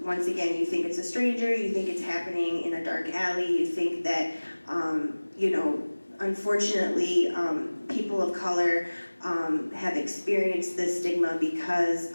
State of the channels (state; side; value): inverted; both; correlation -1.00